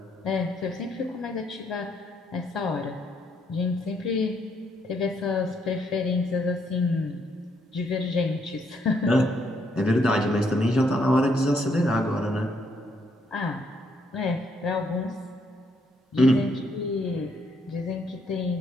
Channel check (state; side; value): normal; both; correlation 0.73